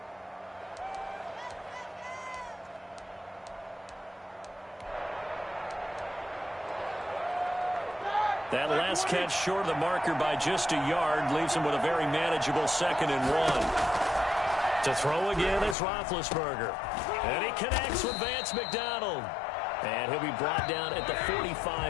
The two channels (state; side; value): drops out; right; at 15.8 s